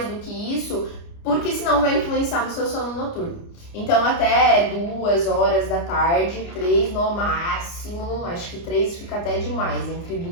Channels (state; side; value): late; right; 29 ms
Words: do que isso, porque senão vai influenciar no seu sono noturno. Então até 2 horas da tarde, 3 no máximo, acho que 3 fica até demais, entre